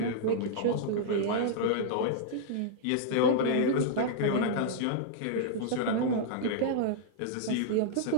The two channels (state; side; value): different; both; correlation -0.02